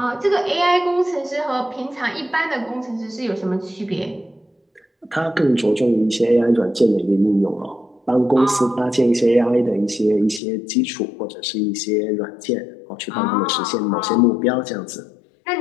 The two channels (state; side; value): drops out; right; at 10.4 s